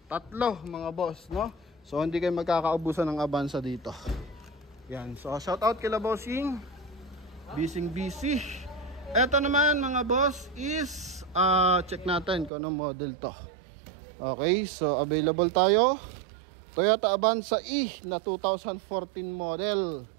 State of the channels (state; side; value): drops out; left; at 12.5 s